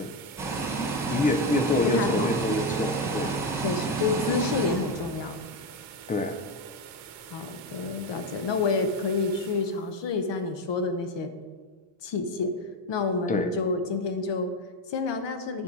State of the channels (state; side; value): normal; both; correlation 0.12